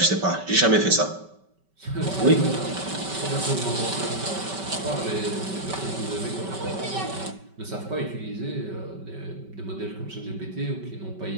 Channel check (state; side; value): late; left; 5.2 ms